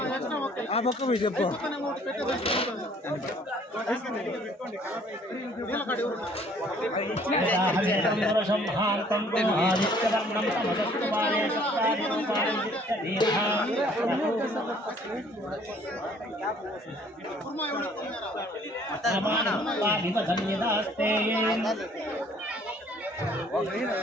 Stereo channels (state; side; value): normal; both; correlation 0.58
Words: ఆ పక్క పోయి చెప్పు